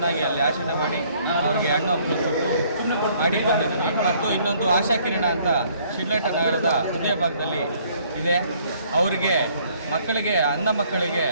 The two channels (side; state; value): both; inverted; correlation -0.62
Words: ಅಲ್ಲಿ ಆಚರಣೆ ಮಾಡಿ ಅವರಿಗೆ ಹಣ್ಣು ಹಂಪಲು ಕೊಟ್ಟು ಮಾಡಿ ಬಂದಿದ್ವಿ. ಮತ್ತು ಇನ್ನೊಂದು ಆಶಾಕಿರಣ ಅಂತ ಶಿಡ್ಲಘಟ್ಟ ನಗರದ ಹೃದಯ ಭಾಗದಲ್ಲಿ ಇದೆ. ಅವರಿಗೆ ಅಂಧ ಮಕ್ಕಳಿಗೆ